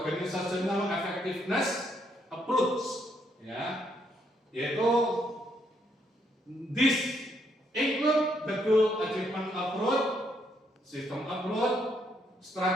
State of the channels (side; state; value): both; normal; correlation 0.74